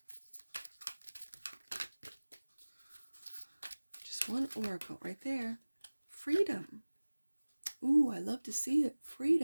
Just one oracle right there. Freedom. Ooh, I love to see it.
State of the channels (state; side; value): inverted; both; correlation -1.00